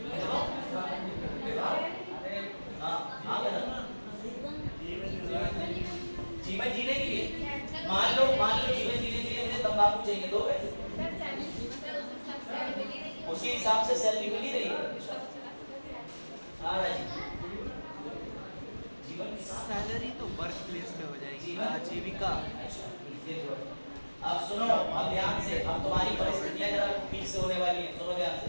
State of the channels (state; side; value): inverted; both; correlation -1.00